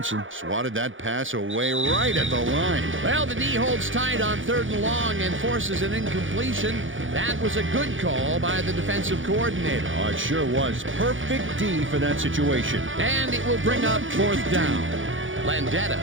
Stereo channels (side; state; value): left; late; 0.57 ms